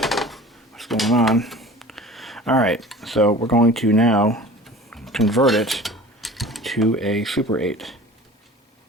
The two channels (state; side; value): normal; both; correlation 0.41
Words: what's going on. Alright, so we're going to now convert it to a Super 8.